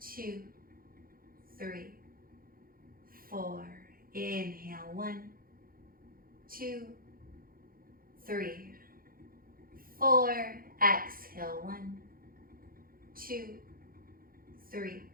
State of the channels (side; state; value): left; late; 0.42 ms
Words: 3, 4. Inhale. 1, 2, 3, 4. Exhale. 1, 2, 3,